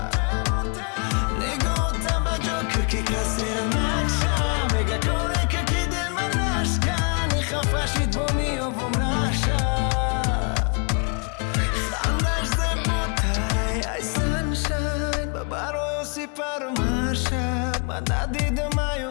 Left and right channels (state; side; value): quieter; right; 34.8 dB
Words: نگاه توجه که کسی را نکشم میگه کنه که دل من نشکنی خفشید با میابم رشم خندش زیباتره ای سنشن من برای سپر مرشم من ندیدم